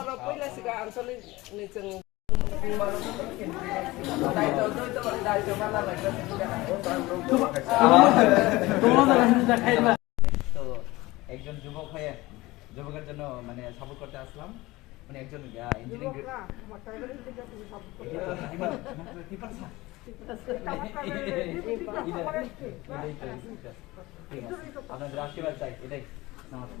pila siga ansoli niceng. Dai to mana lagi. তোমাদের রান্না খাইবা তো একজন যুবক হয়ে যুবকের জন্য মানে সাপোর্ট করতে আসলাম মানে একজন ইঞ্জিনিয়ারিং আপনাদের আশীর্বাদ চাই এটাই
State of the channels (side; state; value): right; quieter; 20.2 dB